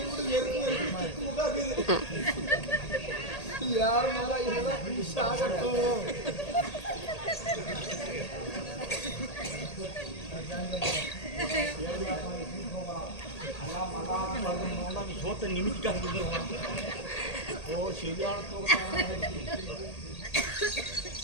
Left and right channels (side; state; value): right; late; 1.8 ms